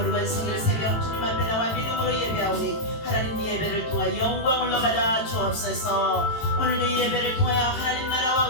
성일 새벽 주님 앞에 나와 믿음으로 예배하오니 하나님 이 예배를 통하여 영광을 받아 주옵소서. 오늘 이 예배를 통하여 하나님 나라와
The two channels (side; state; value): right; late; 18 ms